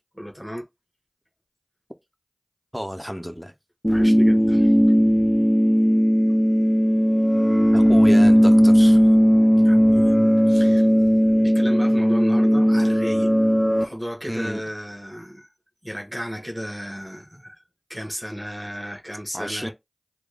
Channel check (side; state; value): both; identical; correlation 1.00